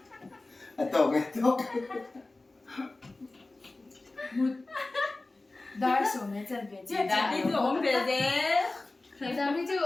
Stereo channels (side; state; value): right; quieter; 3.1 dB